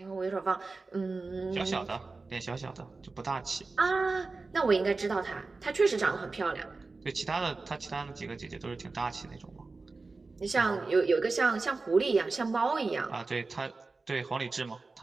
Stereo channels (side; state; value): left; quieter; 3.8 dB